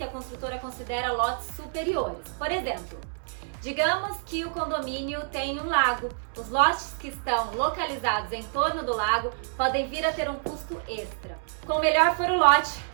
a construtora considera lotes superiores. Por exemplo, digamos que o condomínio tem um lago. Os lotes que estão localizados em torno do lago podem vir a ter um custo extra. Quanto melhor for o lote,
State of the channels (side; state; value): left; silent; 60 dB below the other